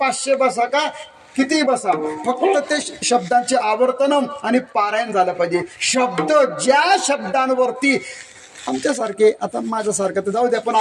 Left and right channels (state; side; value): identical; both; correlation 1.00